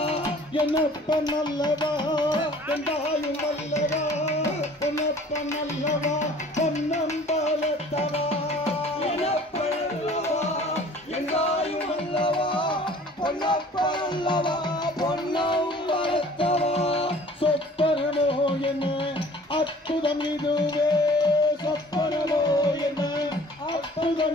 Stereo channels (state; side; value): normal; both; correlation 0.50